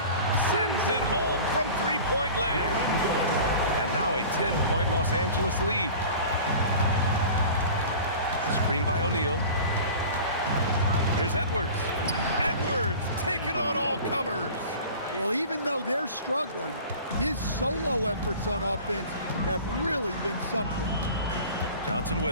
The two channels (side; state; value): both; inverted; correlation -0.40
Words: sends it home from 3-point land. And now a 10-point Los Angeles lead. Screen by O'Neal. Here's Edwards. Edwards taking on all comers. Well, even though they're struggling, his solo efforts on offense have really been something. Johnson